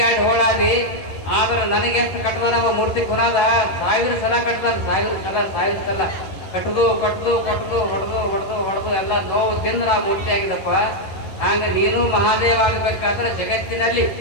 2 ಹೋಳಾದಿ. ಆದ್ರೆ ನನಗೆ ಎಷ್ಟು ಕಟ್ಟದ ಮೂರ್ತಿ ಕುನಾದ 1000 ಸಲ ಕಟ್ಟದ, 1000 ಸಲ ಕಟ್ಟದು ಹೊಡೆದು ಎಲ್ಲ ನೋವು ತಿಂದು ನಾ ಮೂರ್ತಿ ಆಗಿದಪ್ಪ. ಹಂಗ ನೀನು ಮಹಾದೇವ ಆಗಬೇಕಾದ್ರೆ ಜಗತ್ತಿನಲ್ಲಿ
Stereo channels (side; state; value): right; late; 11 ms